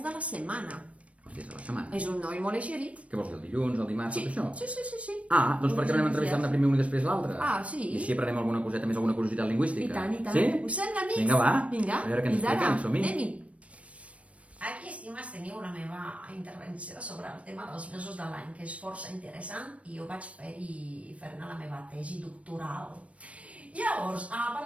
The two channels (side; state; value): left; late; 0.064 ms